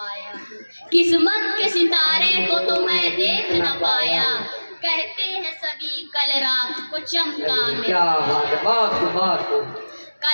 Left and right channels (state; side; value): inverted; both; correlation -1.00